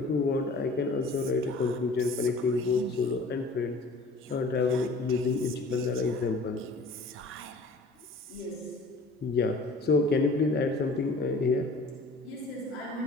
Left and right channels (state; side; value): quieter; right; 3.2 dB